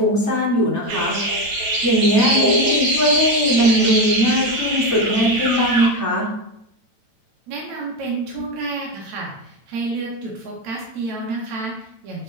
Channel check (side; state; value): left; late; 9.0 ms